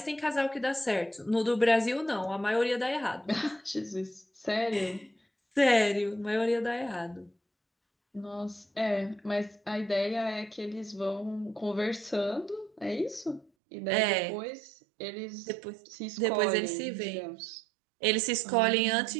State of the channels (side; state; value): left; drops out; at 13.5 s